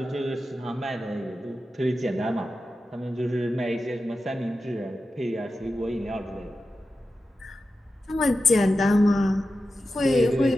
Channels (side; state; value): both; normal; correlation 0.92